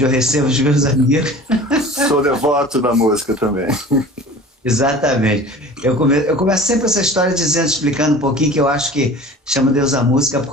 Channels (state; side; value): normal; both; correlation 0.41